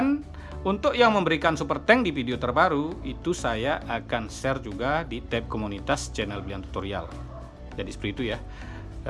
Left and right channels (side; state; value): both; identical; correlation 1.00